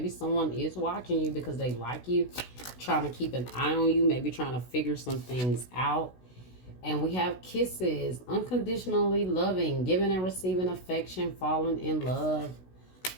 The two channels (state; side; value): late; right; 16 ms